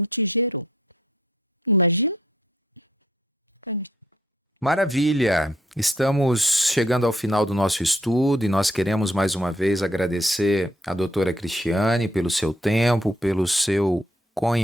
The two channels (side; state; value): both; normal; correlation 0.68